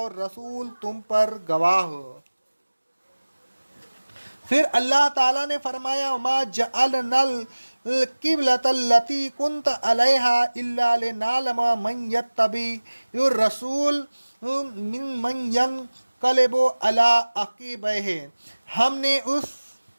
رسول تم پر گواہ ہو۔ پھر اللہ تعالیٰ نے فرمایا، وَمَا جَعَلْنَا القبلۃ التی کنت علیہا الا لنعلم من یتبع الرسول من ینقلب علی عقبیہ، ہم نے اس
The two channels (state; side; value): inverted; both; correlation -1.00